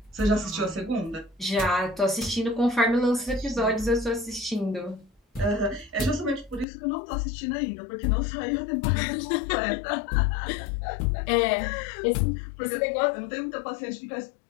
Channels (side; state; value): right; drops out; at 6.7 s